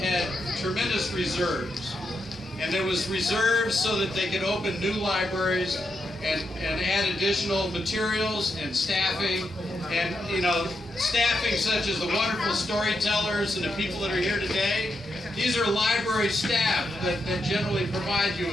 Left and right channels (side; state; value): both; normal; correlation 0.83